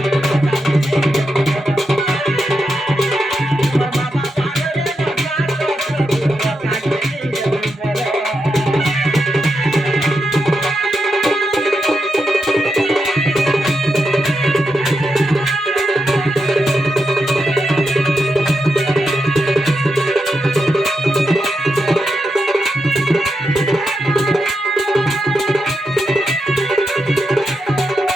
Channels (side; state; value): both; normal; correlation 0.86